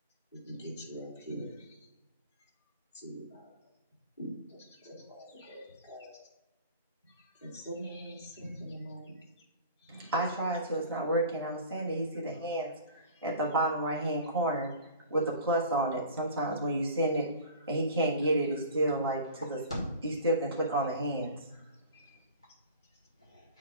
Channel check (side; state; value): both; inverted; correlation -0.40